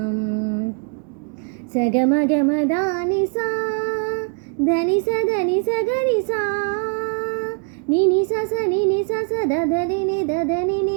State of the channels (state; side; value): quieter; left; 38.3 dB